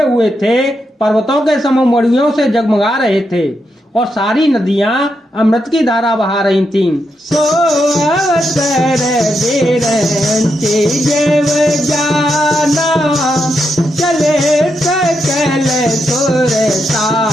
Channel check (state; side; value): normal; both; correlation 0.83